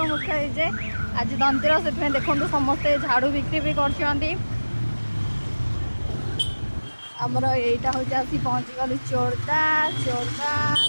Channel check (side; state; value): both; inverted; correlation -1.00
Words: मुख्य हो जाए। आज धनतेर से देखो समस्ते झाड़ू बिक्री भी कर आमर यहीटा हूँ आसी पहुँची गलु चोरदा